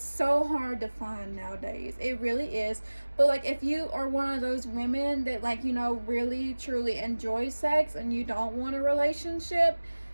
so hard to find nowadays. It really is. But like, if you are one of those women that like, really truly enjoy sex and you don't want a relationship,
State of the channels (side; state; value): both; inverted; correlation -1.00